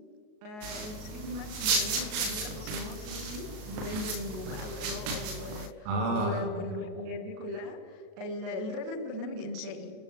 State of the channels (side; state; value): left; late; 38 ms